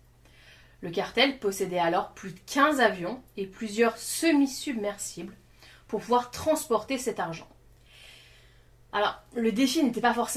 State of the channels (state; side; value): identical; both; correlation 1.00